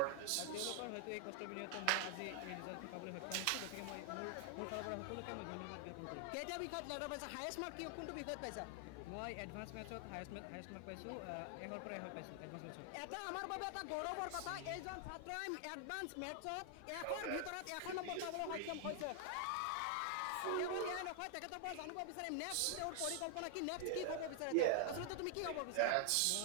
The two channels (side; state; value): both; different; correlation 0.00